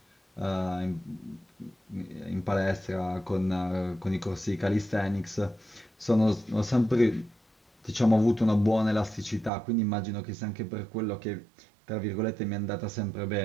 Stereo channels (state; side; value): drops out; left; at 9.5 s